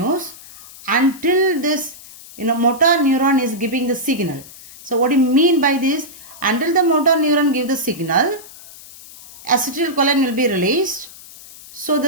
until this motor neuron is giving the signal. So what do you mean by this? Until the motor neuron give the signal, acetylcholine will be released. So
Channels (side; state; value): left; noise; hiss, 19 dB below the sound